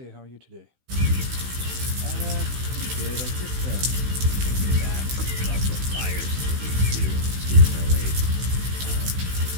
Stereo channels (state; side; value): late; left; 16 ms